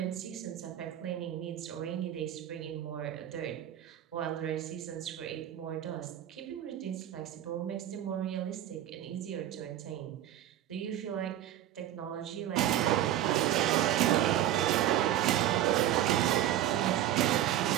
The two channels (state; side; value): quieter; left; 12.1 dB